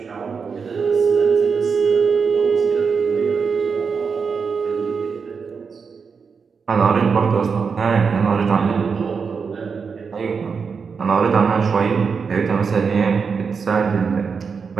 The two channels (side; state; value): left; quieter; 5.6 dB